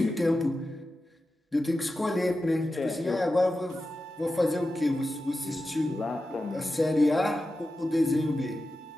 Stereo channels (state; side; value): normal; both; correlation 0.92